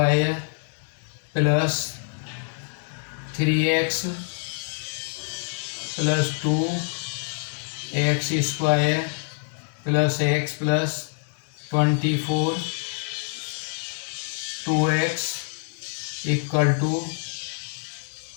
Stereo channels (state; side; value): silent; right; digital silence